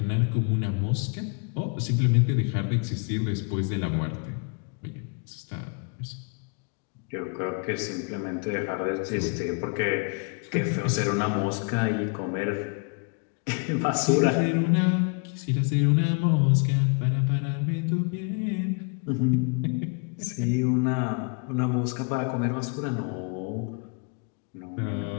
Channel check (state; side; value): quieter; right; 37.1 dB